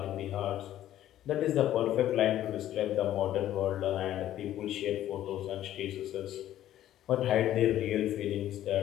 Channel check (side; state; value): right; quieter; 12.6 dB